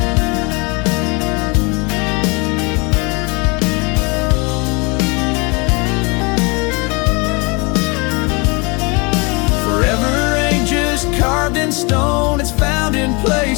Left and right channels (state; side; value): quieter; right; 29.7 dB